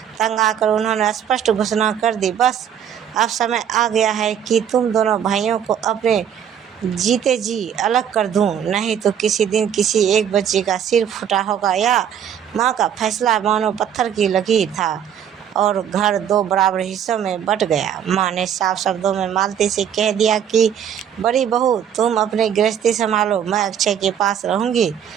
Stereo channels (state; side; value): quieter; left; 8.8 dB